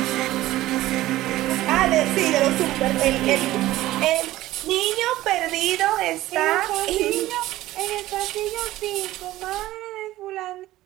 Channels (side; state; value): left; quieter; 15.9 dB